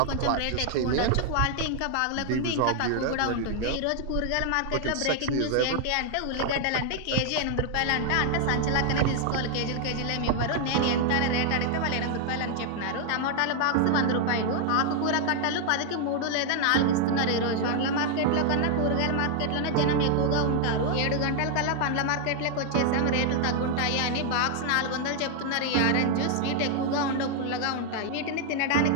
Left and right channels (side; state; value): both; different; correlation 0.00